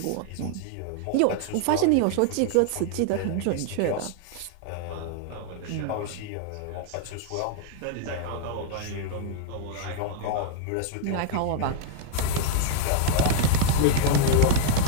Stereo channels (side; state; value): both; different; correlation -0.01